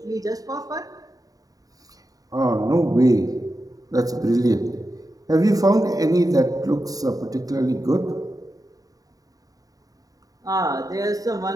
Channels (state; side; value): late; left; 0.18 ms